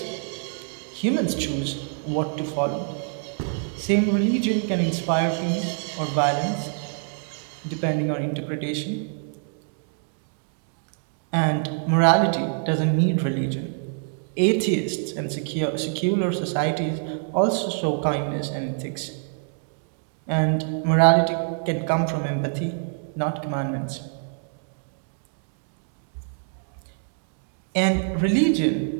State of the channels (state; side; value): silent; left; 60 dB below the other